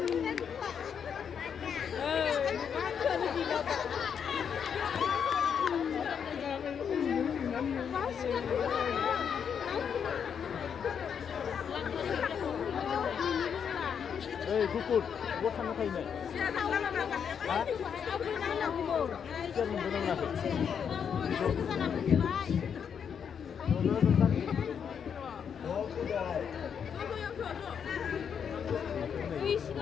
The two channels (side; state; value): right; quieter; 7.4 dB